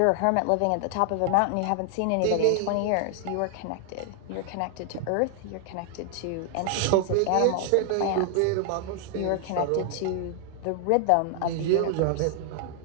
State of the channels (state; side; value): different; both; correlation 0.00